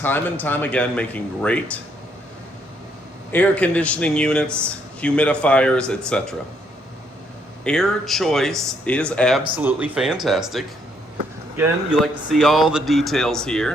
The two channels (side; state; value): both; normal; correlation 0.71